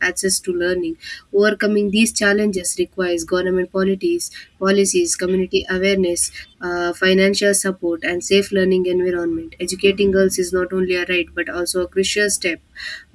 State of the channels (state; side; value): identical; both; correlation 1.00